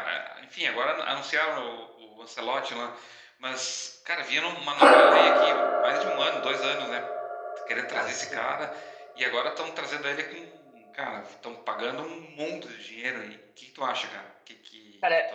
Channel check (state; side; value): identical; both; correlation 1.00